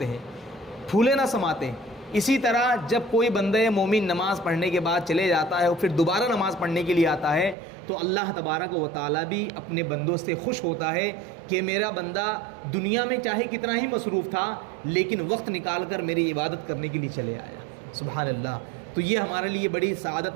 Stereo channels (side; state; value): left; drops out; at 7.6 s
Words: ہیں، پھولے نہ سماتے۔ اسی طرح جب کوئی بندہ مومن نماز پڑھنے کے بعد چلے جاتا ہے اور پھر دوبارہ نماز پڑھنے کے لیے آتا ہے تو اللہ تبارک و تعالیٰ بھی اپنے بندوں سے خوش ہوتا ہے کہ میرا بندہ دنیا میں چاہے کتنا ہی مصروف تھا لیکن وقت نکال کر میری عبادت کرنے کے لیے چلے آیا۔ سبحان اللہ، تو یہ ہمارے لیے بڑی سعادت